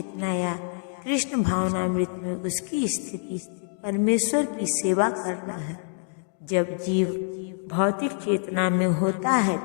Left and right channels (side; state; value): right; silent; 61 dB below the other